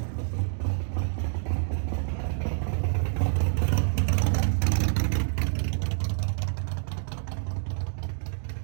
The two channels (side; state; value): left; silent; digital silence